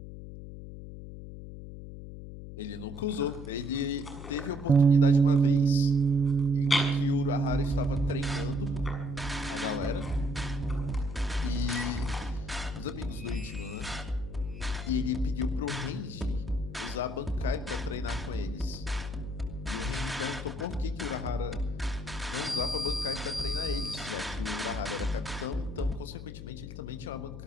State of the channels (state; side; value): noise; left; hum, 11 dB below the sound